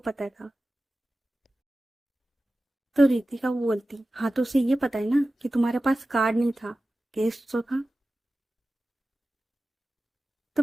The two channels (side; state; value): both; normal; correlation 0.95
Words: था। तो रितिका वो बोलती, हाँ तो उसे ये पता है ना कि तुम्हारे पास कार्ड नहीं था, कैश तो था। तो